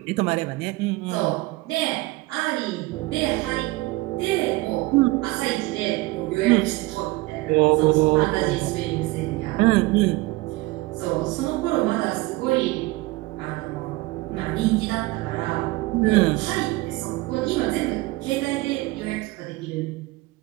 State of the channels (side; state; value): left; quieter; 21.0 dB